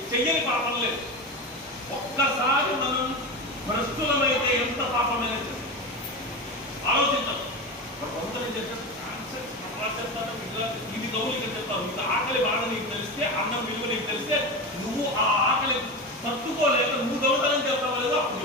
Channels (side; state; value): both; normal; correlation 0.22